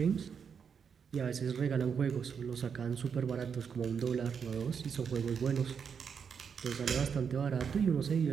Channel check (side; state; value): left; quieter; 6.7 dB